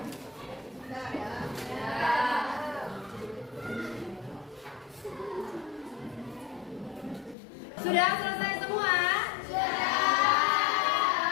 Sudah selesai semua? Sudah.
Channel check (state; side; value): drops out; right; at 7.4 s